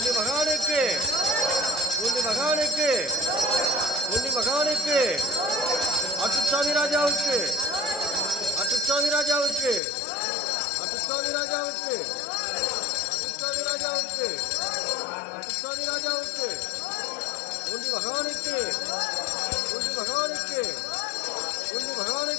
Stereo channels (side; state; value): right; drops out; at 9.8 s